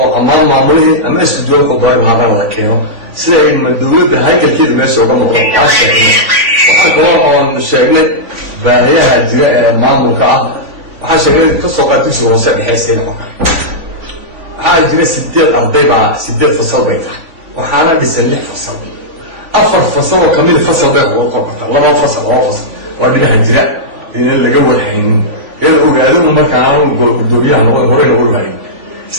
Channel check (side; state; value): left; late; 3.5 ms